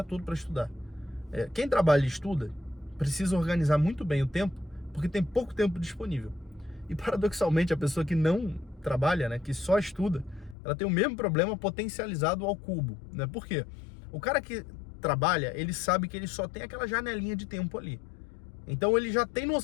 todo para estudar. Quem trabalha e estuda precisa organizar muito bem o tempo, porque tem pouco tempo disponível. E paradoxalmente, a pessoa que não trabalha, né, que só estuda, ela tem o mesmo problema potencializado ao cubo, né? Por quê? O cara que trabalha, ele sabe que ele só tem aquela janelinha de tempo ali. Então ele já tem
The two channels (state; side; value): drops out; right; at 10.6 s